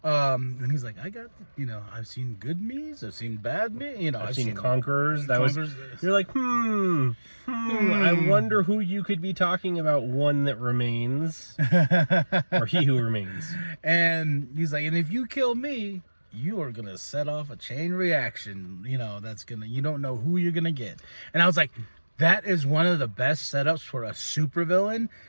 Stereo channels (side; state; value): both; inverted; correlation -1.00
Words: and he's like, I got, I've seen good me's, I've seen bad me, I've seen Conquerors. You're like, I wonder who you could be talking about, one that remains, or he who remains. And he's like, and if you kill me, you are gonna set off a chain reaction, that's gonna, you don't know who you're gonna get. And I was like, that is one of the best setups for a supervillain